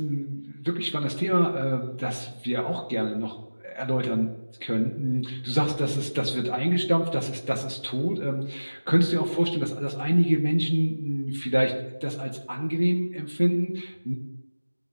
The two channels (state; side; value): inverted; both; correlation -1.00